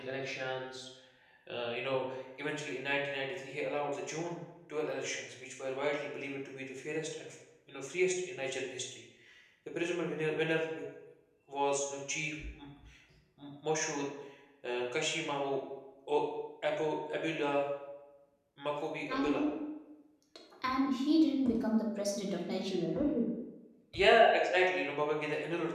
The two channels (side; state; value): both; identical; correlation 1.00